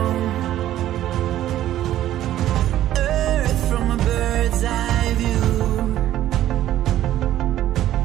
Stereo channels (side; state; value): left; quieter; 13.0 dB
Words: Earth from a bird's eye view.